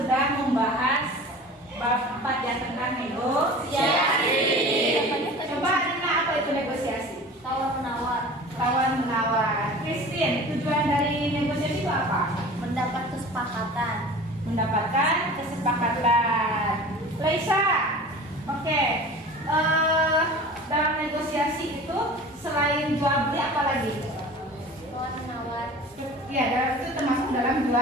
membahas bab 4 yang tentang negosiasi. Coba Rina, apa itu negosiasi? Tawar-menawar. Christine, tujuan dari negosiasi itu apa? Mendapat kesepakatan. Laisa, oke. Dalam negosiasi itu selain jual beli apa lagi? Tawar-menawar. Ya, dalam itu termasuk dalam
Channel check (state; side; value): normal; both; correlation 0.39